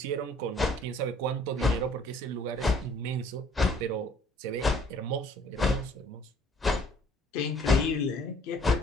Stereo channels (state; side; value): normal; both; correlation 0.58